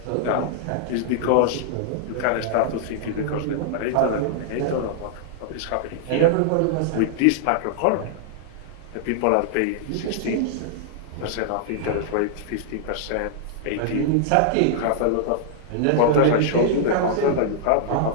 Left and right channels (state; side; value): different; both; correlation -0.01